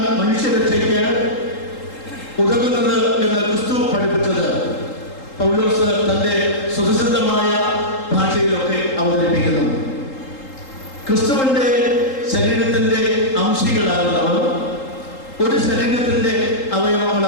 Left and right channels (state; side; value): late; right; 3.8 ms